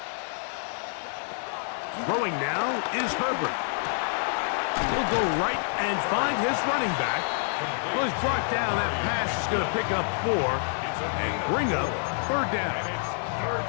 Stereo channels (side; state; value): right; silent; 60 dB below the other